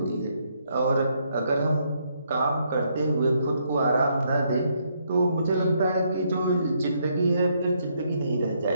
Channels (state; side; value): inverted; both; correlation -0.74